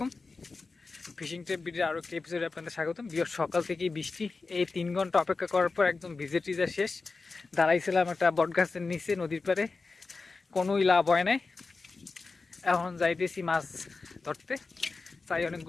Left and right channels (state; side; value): quieter; right; 4.0 dB